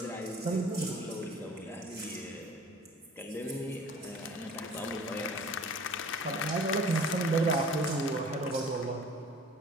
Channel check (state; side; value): normal; both; correlation 0.47